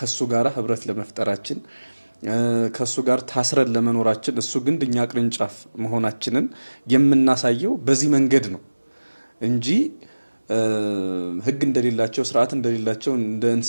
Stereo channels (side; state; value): both; inverted; correlation -1.00